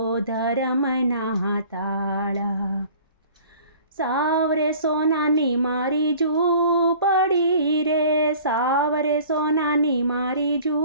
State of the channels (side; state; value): both; inverted; correlation -0.48